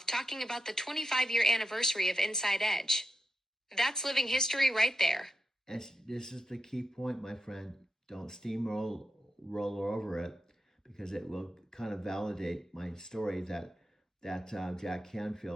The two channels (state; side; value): normal; both; correlation 0.88